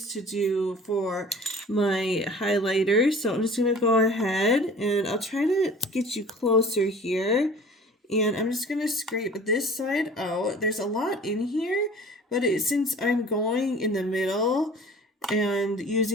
to do for my highlighter. So I'm just going to go ahead and I'll try to get you closer here. And I'm just going to scrape this side out. There's a lot in here, but since I'm going in the middle and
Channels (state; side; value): normal; both; correlation 0.45